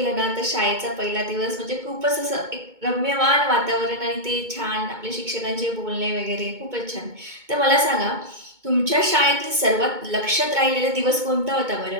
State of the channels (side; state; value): left; late; 2.2 ms